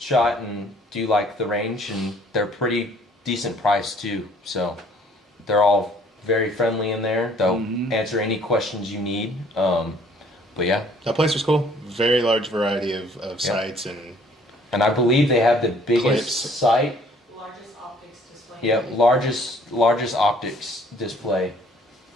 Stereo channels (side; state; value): both; normal; correlation 0.59